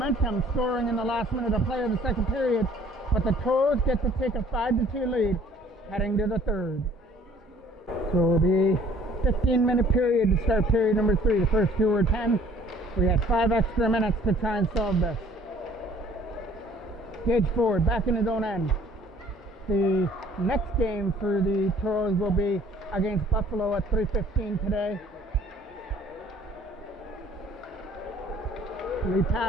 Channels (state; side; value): normal; both; correlation 0.55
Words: scoring in the last minute of play of the second period, but the Toros get to take a 5-2 lead heading to the third. So it'll be 15-minute period to start period number 3. The first 2 were 10. We had 5 extra minutes to try and solve this. Gage Ford back in his own end. The next game for the Toros will be against Buffalo at 3:15 today. Lead